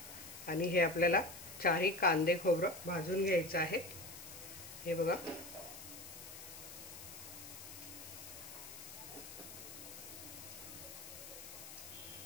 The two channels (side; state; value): left; noise; hiss, 12 dB below the sound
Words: आणि हे आपल्याला 4 कांदे खोबरं भाजून घ्यायचं आहे। हे बघा,